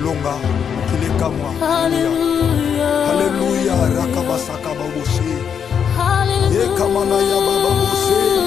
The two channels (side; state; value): right; quieter; 7.5 dB